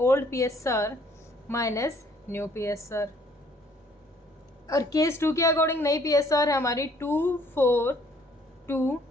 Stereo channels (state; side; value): normal; both; correlation 0.61